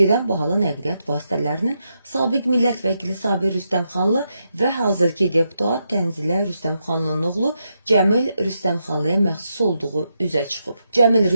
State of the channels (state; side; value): inverted; both; correlation -0.83